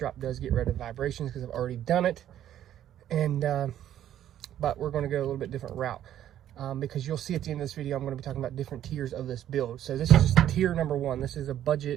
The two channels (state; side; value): quieter; left; 11.3 dB